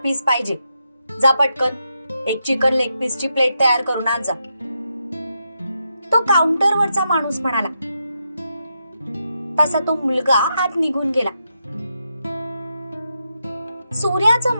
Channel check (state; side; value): inverted; both; correlation -0.83